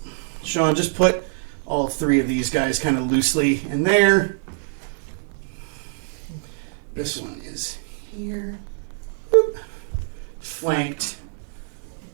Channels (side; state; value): left; silent; digital silence